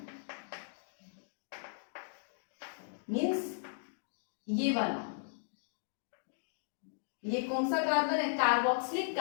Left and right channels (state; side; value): silent; right; digital silence